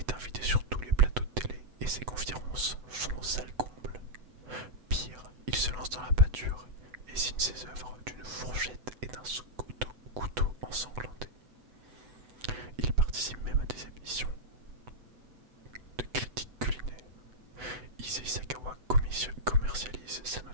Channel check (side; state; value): left; late; 8.0 ms